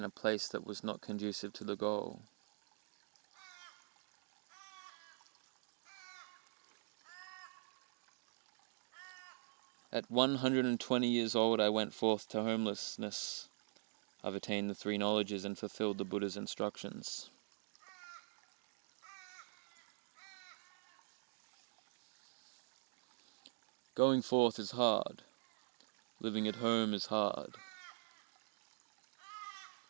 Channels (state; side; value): silent; left; digital silence